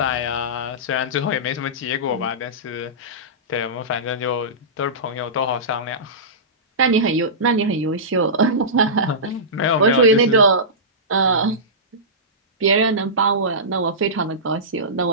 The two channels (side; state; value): both; normal; correlation -0.19